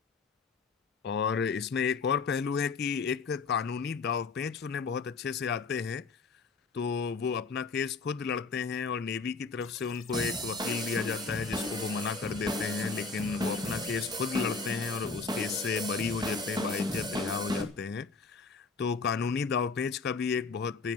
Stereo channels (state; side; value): quieter; right; 4.5 dB